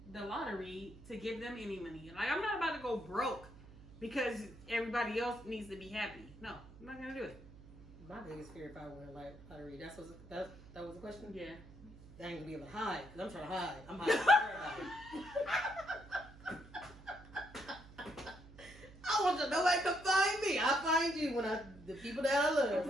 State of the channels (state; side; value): noise; right; hum, 19 dB below the sound